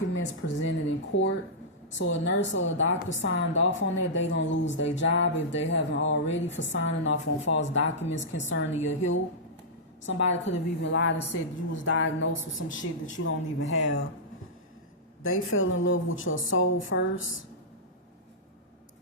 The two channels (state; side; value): normal; both; correlation -0.12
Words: presented in court. So a nurse or a doctor signed off on that, they gonna lose their job if they haven't already for signing off on false documents concerning your health. Somebody could have even lied and said you was diagnosed with some shit that you don't even have. They fell in love with your soul first.